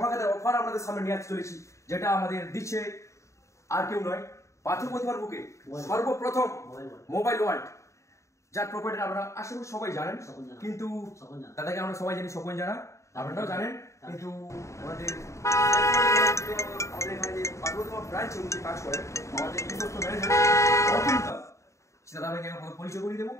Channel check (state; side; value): late; right; 0.14 ms